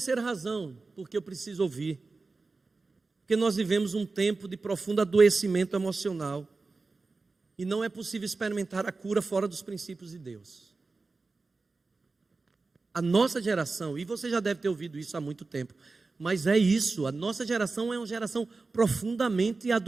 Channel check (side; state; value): left; quieter; 3.8 dB